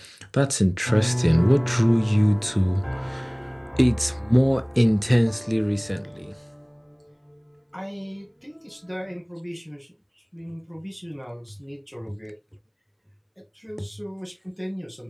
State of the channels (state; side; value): identical; both; correlation 1.00